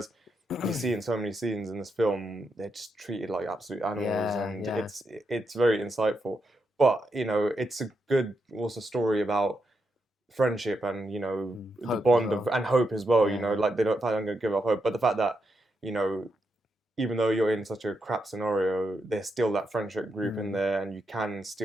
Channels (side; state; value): both; normal; correlation 0.83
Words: you see in so many scenes in this film, they're just treated like absolute animals, and it's very insightful. But it's a good also story about friendship and the bond of and hope as well. They don't going to give up hope, but the fact that even though you're in such a crap scenario, there's still that friendship group in there, and you can